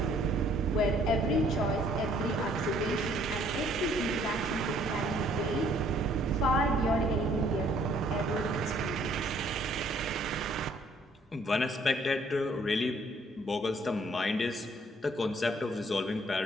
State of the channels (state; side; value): normal; both; correlation 0.62